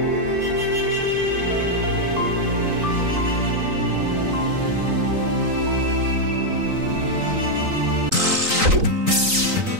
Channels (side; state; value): left; late; 3.9 ms